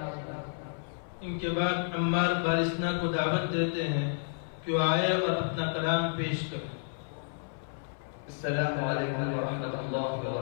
علیکم۔ ان کے بعد عمار بارسنا کو دعوت دیتے ہیں کہ وہ آئے اور اپنا کلام پیش کریں۔ السلام علیکم ورحمۃ اللہ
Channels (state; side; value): silent; right; 57 dB below the other